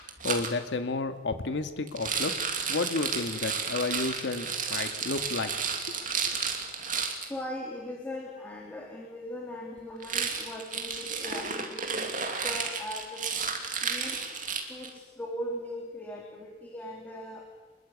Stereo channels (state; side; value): normal; both; correlation 0.06